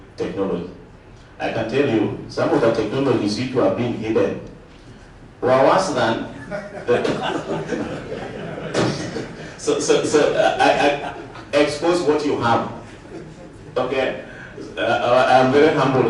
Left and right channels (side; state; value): both; identical; correlation 1.00